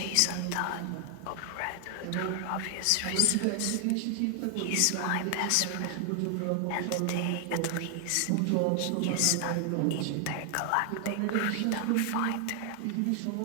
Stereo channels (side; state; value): both; different; correlation 0.00